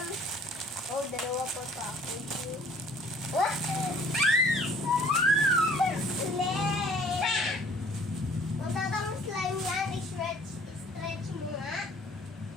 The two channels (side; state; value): both; normal; correlation 0.54